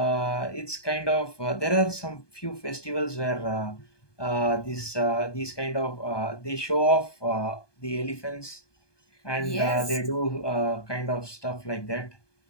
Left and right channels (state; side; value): late; right; 1.2 ms